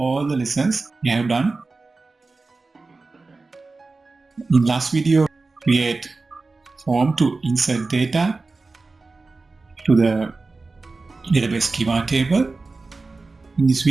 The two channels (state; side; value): quieter; left; 3.7 dB